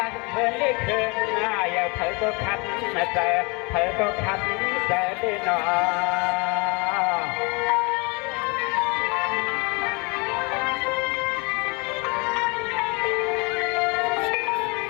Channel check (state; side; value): quieter; right; 29.6 dB